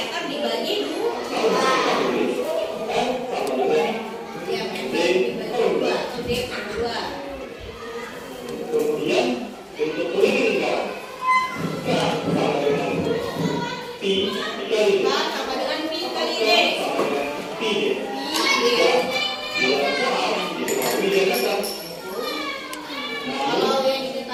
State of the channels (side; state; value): both; identical; correlation 1.00